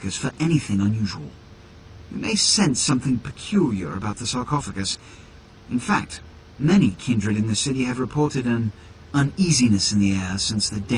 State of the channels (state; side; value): identical; both; correlation 1.00